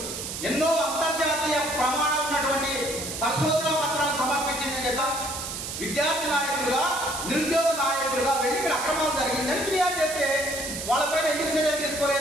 ఎన్నో అంతర్జాతీయ ప్రమాణాలు ఉన్నటువంటి పరిశోధన పత్రాలు సమర్పించిన చేత విద్యార్థి నాయకులుగా, నిరుద్యోగ నాయకులుగా వెళ్ళి ఇక్కడ అక్రమాలు జరిగిందని ఫిర్యాదు చేస్తే వాళ్ళపైన ఎందుకు చర్యలు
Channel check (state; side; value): noise; right; hiss, 6 dB below the sound